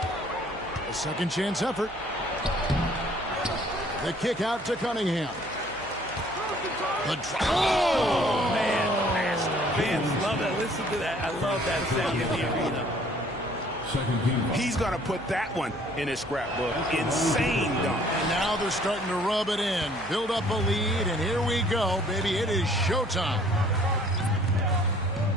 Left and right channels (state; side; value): noise; right; hum, 20 dB below the sound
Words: A second chance effort. The kick out to Cunningham. Oh, man. Fans love that. Listen to that. I love that sound in the arena. He's going to put that one in his scrapbook. Insane dunk. And now they're starting to rub it in. Build up a lead, and here we go, baby. It is showtime.